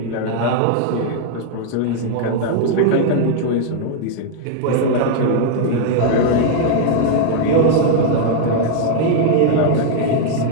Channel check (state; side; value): different; both; correlation 0.00